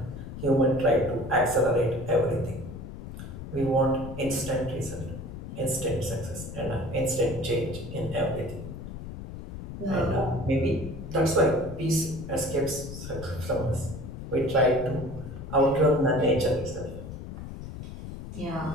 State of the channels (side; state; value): left; noise; rumble, 10 dB below the sound